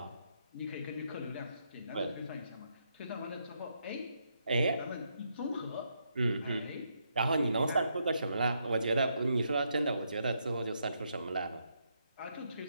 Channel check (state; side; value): inverted; both; correlation -0.78